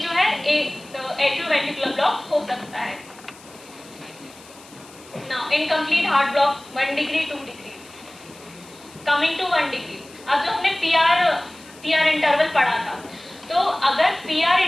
है एट्रियोवेंट्रिकुलर ब्लॉक हो सकता है। Now incomplete heart block 1 degree 2 degree, coming to 1 degree. अब जो हमने पीआर इंटरवल पढ़ा था, तो अगर पीआर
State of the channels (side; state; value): left; noise; hiss, 22 dB below the sound